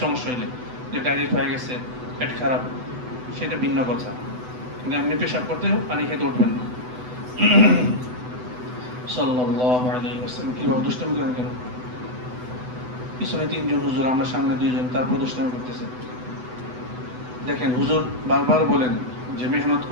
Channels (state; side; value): late; left; 8.0 ms